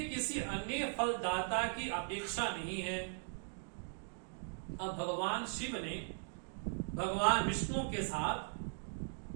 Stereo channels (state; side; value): silent; left; digital silence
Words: किसी अन्य फलदाता की अपेक्षा नहीं है। अब भगवान शिव ने भगवान विष्णु के साथ